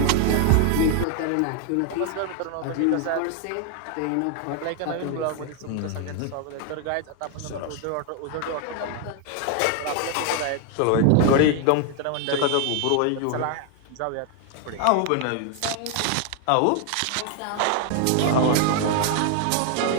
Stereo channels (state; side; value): different; both; correlation 0.00